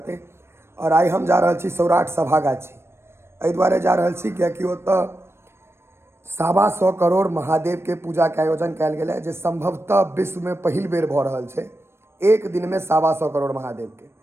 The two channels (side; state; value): left; late; 0.12 ms